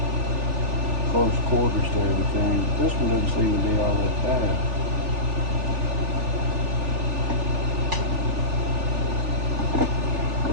close quarters to everything. This one doesn't seem to be all that bad.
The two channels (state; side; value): late; left; 3.4 ms